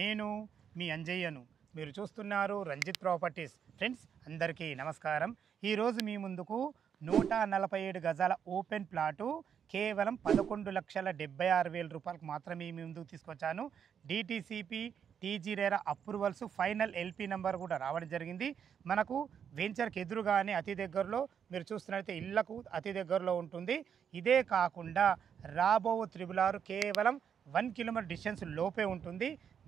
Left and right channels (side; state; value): left; quieter; 7.9 dB